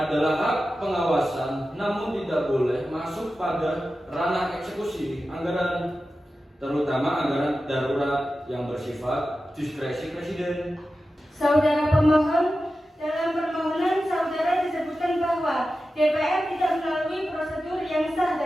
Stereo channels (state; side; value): normal; both; correlation 0.93